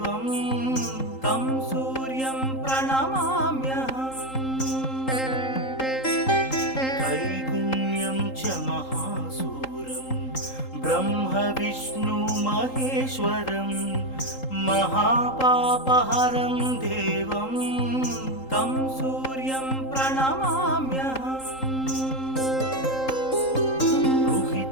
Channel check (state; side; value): late; right; 3.8 ms